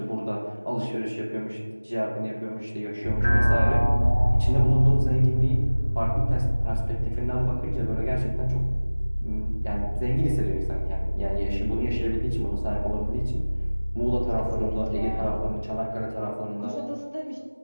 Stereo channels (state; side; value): inverted; both; correlation -1.00